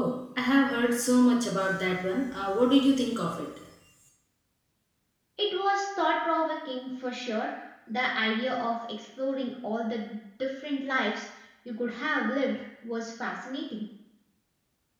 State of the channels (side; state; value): both; identical; correlation 1.00